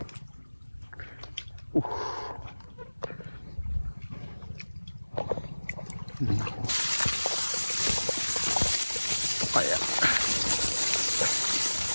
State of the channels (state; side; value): inverted; both; correlation -1.00